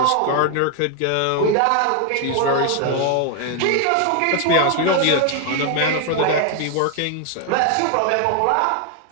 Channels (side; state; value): both; different; correlation 0.01